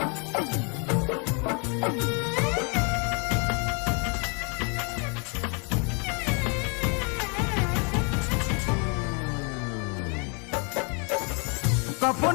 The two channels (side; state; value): right; quieter; 35.0 dB